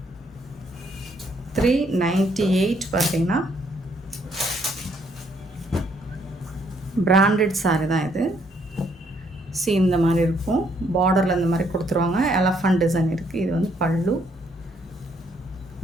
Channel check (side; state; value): both; normal; correlation 0.69